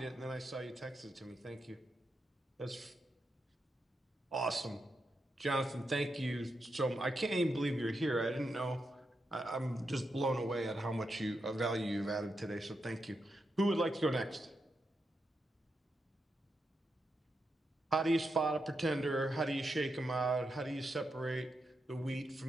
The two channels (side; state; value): both; normal; correlation 0.85